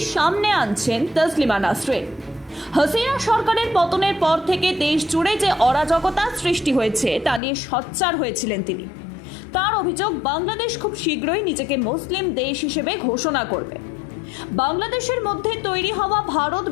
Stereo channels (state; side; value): drops out; right; at 7.4 s